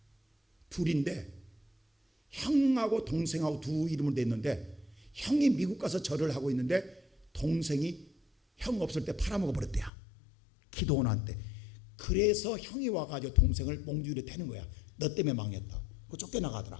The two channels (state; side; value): drops out; right; at 9.9 s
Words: 둘인데 형하고 동생하고 두 이름으로 돼 있는데 형이 미국 가서 절을 하고 있는데 동생이 형 없을 때 팔아먹어 버렸대요. 기도원 한테. 그래서 형이 와가지고 동생을 몽주리에 태는 거야. 너 때문에 망했다고. 그